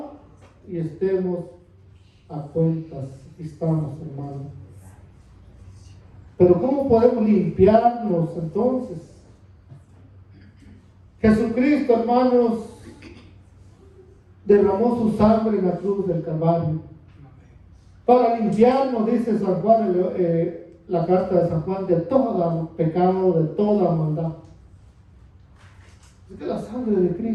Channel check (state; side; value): identical; both; correlation 1.00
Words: y estemos a cuentas. Aquí estamos, hermanos. Pero ¿cómo podemos limpiarnos entonces? Jesucristo, hermanos, derramó su sangre en la cruz del Calvario para limpiarnos, dice San Juan, la carta de San Juan, de todo pecado, de toda maldad. Es que la sangre de